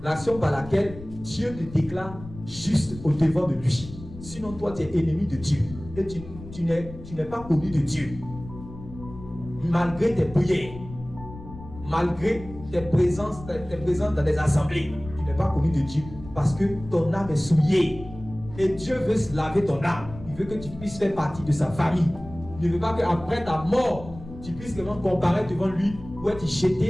L'action par laquelle Dieu te déclare juste au devant de lui. Sinon, toi, tu es ennemi de Dieu. Et tu n'es pas connu de Dieu. Malgré tes prières, malgré tes présences dans des assemblées, tu n'es pas connu de Dieu. Parce que ton âme est souillée. Et Dieu veut se laver ton âme. Il veut que tu puisses faire partie de sa famille. Il ne veut pas qu'après ta mort, tu puisses vraiment comparaître devant lui ou être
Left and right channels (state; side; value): noise; left; rumble, 15 dB below the sound